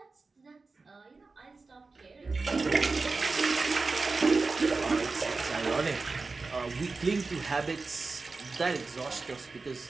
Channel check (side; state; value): left; quieter; 4.0 dB